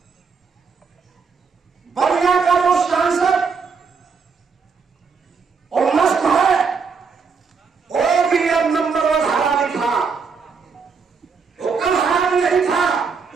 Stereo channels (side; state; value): left; quieter; 5.4 dB